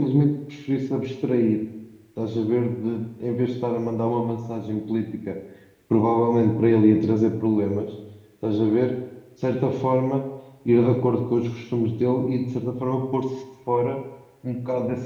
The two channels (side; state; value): both; identical; correlation 1.00